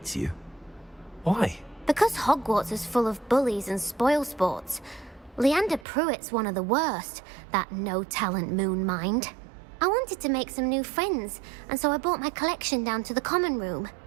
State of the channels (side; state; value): left; drops out; at 5.9 s